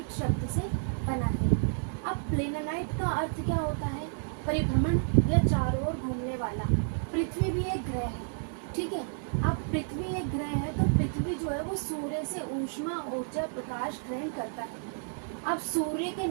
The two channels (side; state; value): left; silent; digital silence